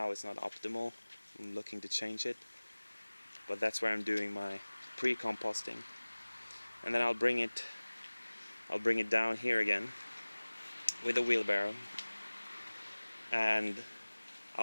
It's not optimal. I'm looking to change it, but that's where I'm doing my pre-composting. And then I'll bring it down here again with a wheelbarrow, and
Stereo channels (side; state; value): both; inverted; correlation -1.00